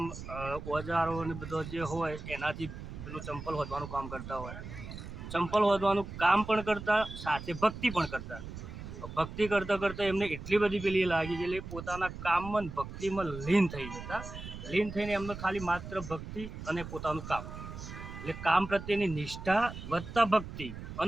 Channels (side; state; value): right; noise; rumble, 10 dB below the sound